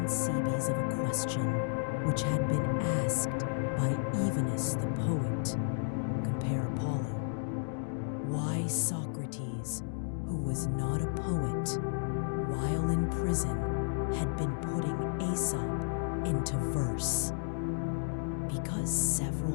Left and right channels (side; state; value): right; silent; digital silence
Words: Cebes of a question which had been asked by Evenus the poet. Compare Apollo. Why Socrates, who was not a poet, while in prison, had been putting Aesop into verse. Because